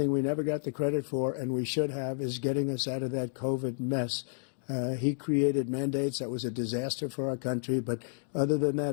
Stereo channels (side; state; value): right; silent; digital silence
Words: we never got the credit for, and we should have, is getting us out of that COVID mess. He created mandates that was a disaster for our country. But other than